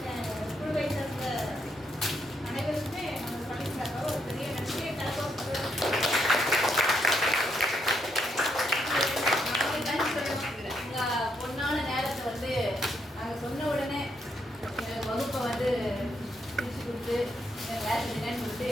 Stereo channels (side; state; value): both; normal; correlation 0.77